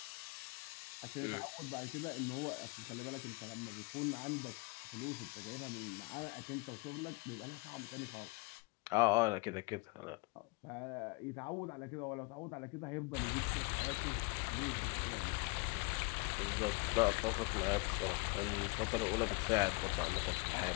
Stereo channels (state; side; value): quieter; right; 27.7 dB